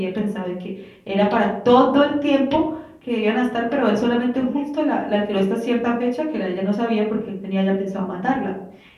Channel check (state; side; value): identical; both; correlation 1.00